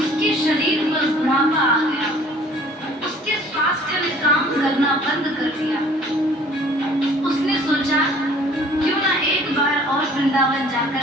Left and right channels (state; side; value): normal; both; correlation 0.53